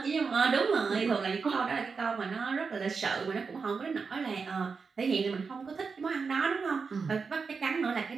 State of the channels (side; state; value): left; quieter; 5.1 dB